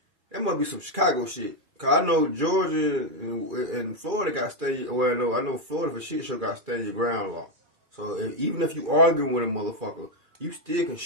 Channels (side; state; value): left; late; 2.4 ms